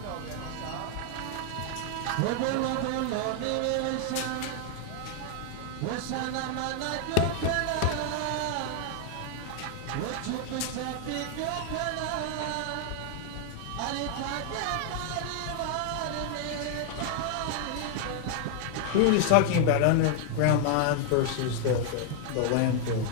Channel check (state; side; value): different; both; correlation 0.00